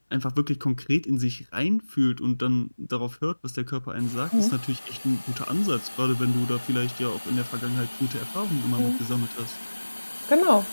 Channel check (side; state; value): both; inverted; correlation -1.00